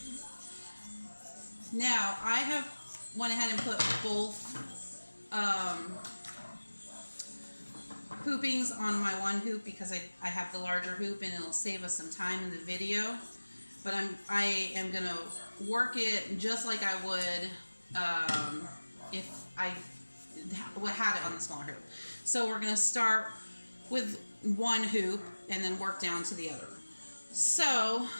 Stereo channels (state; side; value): inverted; both; correlation -1.00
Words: Now I have went ahead and put both hoopings on my one hoop because I have the larger hoop and it'll save us some time in the video. But I am gonna work it just like I would if I had it on the smaller hoop. So we're gonna start with one hoop and then work down to the other. So